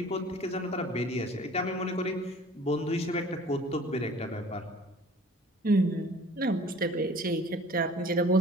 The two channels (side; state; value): both; normal; correlation 0.48